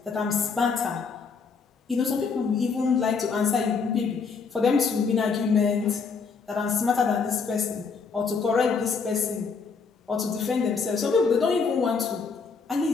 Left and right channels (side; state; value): right; quieter; 5.2 dB